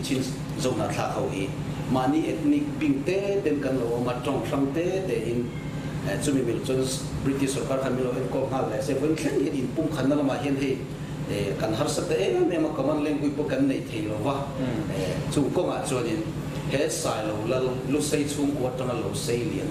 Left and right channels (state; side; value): identical; both; correlation 1.00